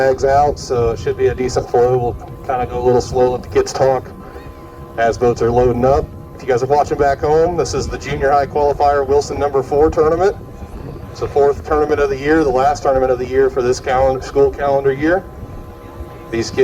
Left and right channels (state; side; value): identical; both; correlation 1.00